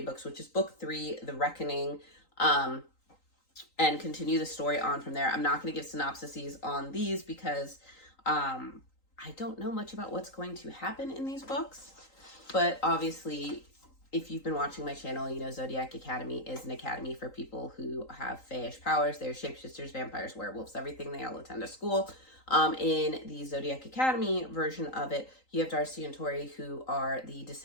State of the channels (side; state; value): right; late; 3.9 ms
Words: books, which is book 3, The Reckoning, and continue the story on from there. I'm not going to give synopsises on these because I don't know much about what's going to happen in these books. But obviously, if you've been watching my channel, you know Zodiac Academy is an academy for people who have fayish powers. They're shapeshifters, vampires, werewolves, everything. They all attend a school. In the Zodiac Academy version of it, you have Darcy and Tori, who are the